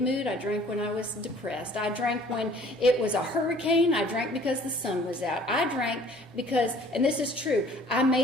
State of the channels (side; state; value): both; normal; correlation 0.53